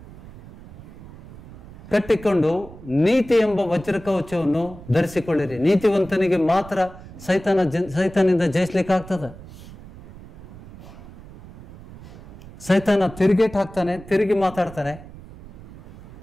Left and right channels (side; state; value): right; noise; rumble, 18 dB below the sound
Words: ಕಟ್ಟಿಕೊಂಡು ನೀತಿ ಎಂಬ ವಜ್ರಕವಚವನ್ನು ಧರಿಸಿಕೊಳ್ಳಿರಿ. ನೀತಿವಂತನಿಗೆ ಮಾತ್ರ ಸೈತಾನಿಂದ ಜಯಿಸ್ಲಿಕ್ಕೆ ಆಗ್ತದೆ. ಸೈತಾನ ತಿರುಗೇಟ್ ಹಾಕ್ತಾನೆ, ತಿರುಗಿ ಮಾತಾಡ್ತಾನೆ.